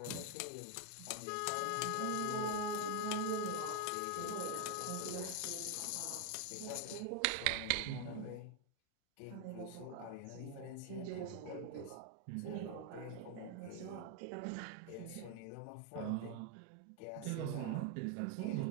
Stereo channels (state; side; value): different; both; correlation 0.01